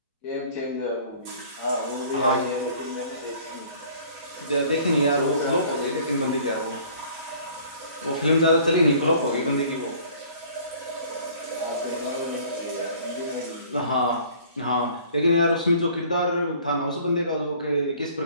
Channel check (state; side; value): inverted; both; correlation -0.52